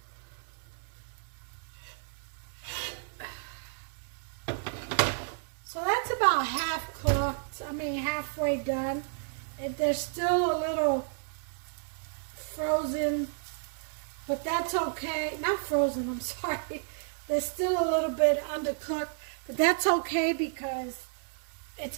So that's about half cooked. I mean halfway done. There's still a little frozen, but that's okay. Not frozen, I'm sorry. There's still a little bit undercooked, but that's okay because it's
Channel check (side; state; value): left; silent; digital silence